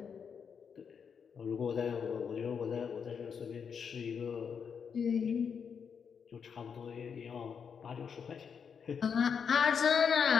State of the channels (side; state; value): right; quieter; 6.7 dB